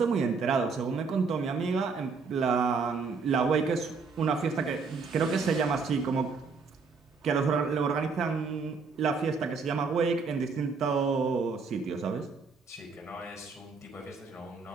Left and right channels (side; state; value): left; quieter; 4.9 dB